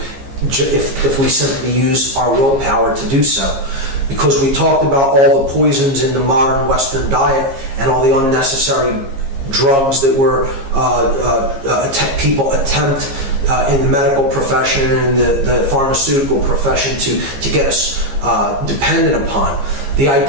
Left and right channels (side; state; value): left; late; 15 ms